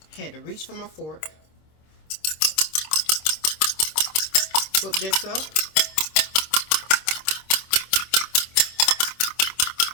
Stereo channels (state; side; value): late; right; 26 ms